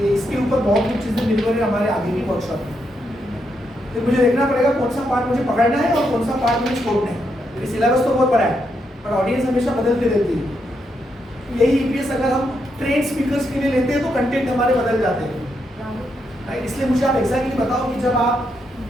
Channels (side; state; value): both; normal; correlation 0.80